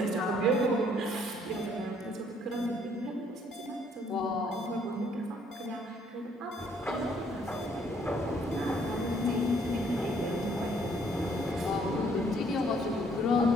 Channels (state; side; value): normal; both; correlation 0.65